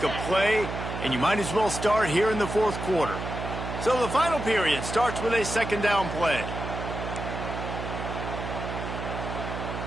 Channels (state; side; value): noise; right; hum, 6 dB below the sound